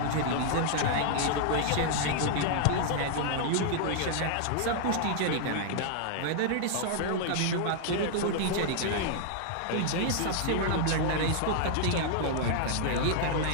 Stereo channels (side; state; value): both; different; correlation -0.01